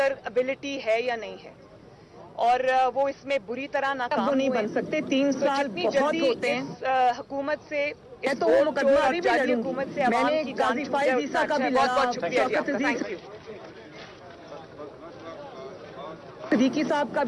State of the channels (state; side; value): identical; both; correlation 1.00